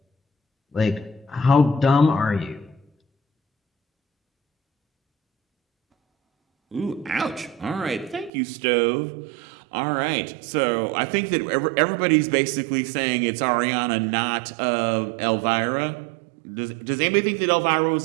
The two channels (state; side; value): drops out; left; at 8.3 s